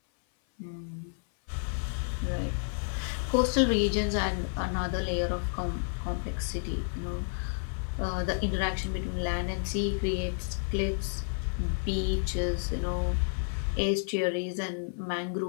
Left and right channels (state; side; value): silent; right; 57 dB below the other